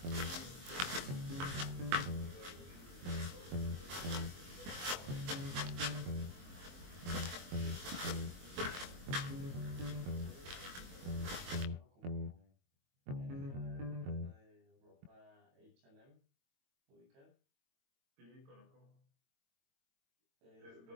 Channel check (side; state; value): left; late; 22 ms